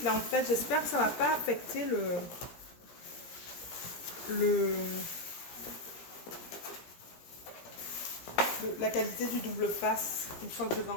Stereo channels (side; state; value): right; late; 17 ms